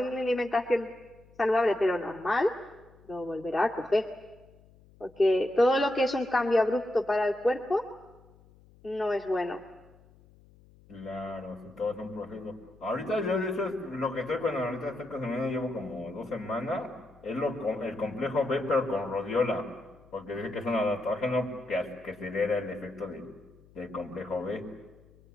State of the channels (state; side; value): noise; left; hum, 26 dB below the sound